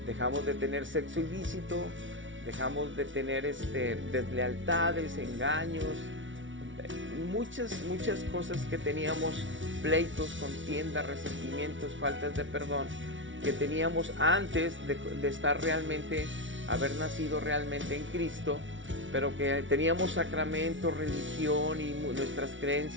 dejamos de tener sexo ilícito, dejamos de tener deslealtades, engaños, muchas cosas que teníamos, pleitos, contiendas, resentimientos, faltas de perdón, que teníamos antes de estar realmente, haber nacido realmente en Cristo, pero que teníamos sacramentos, religión y nuestras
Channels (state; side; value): late; left; 0.56 ms